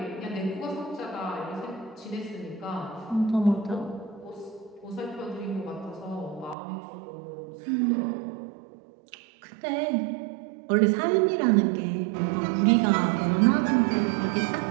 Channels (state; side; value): drops out; left; at 6.6 s